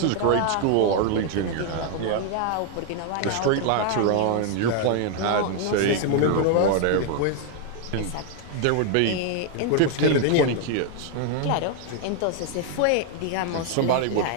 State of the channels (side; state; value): both; different; correlation 0.00